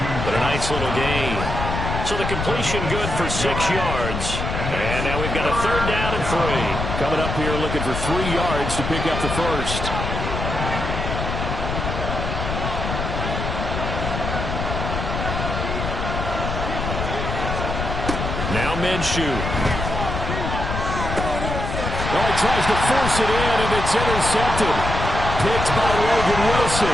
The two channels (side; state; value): left; noise; rumble, 3 dB below the sound